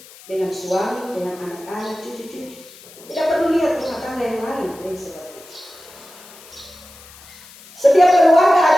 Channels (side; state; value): left; noise; hiss, 21 dB below the sound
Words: dengan suami, dengan anak-anak, cucu-cucu. Tidak perlu lihat rumah tangga yang lain yang seperti itu. Setiap keluarga